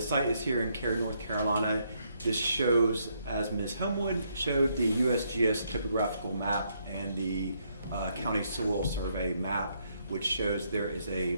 site is here in Cary, North Carolina. This shows, as Ms. Homewood showed, the USGS topographical map and the county soil survey map, which shows there is a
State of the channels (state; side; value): inverted; both; correlation -0.74